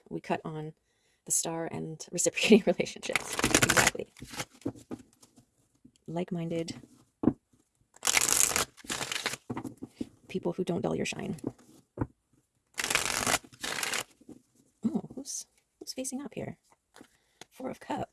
We cut on the star and reciprocating relationships. Exactly. Like-minded people who don't dull your shine. Oh, who's facing up here? Four of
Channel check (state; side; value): identical; both; correlation 1.00